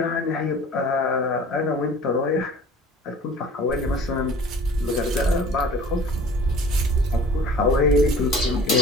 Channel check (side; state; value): both; normal; correlation 0.46